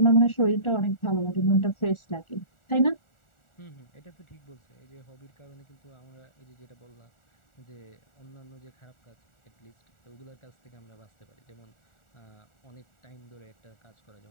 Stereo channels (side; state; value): right; late; 1.4 ms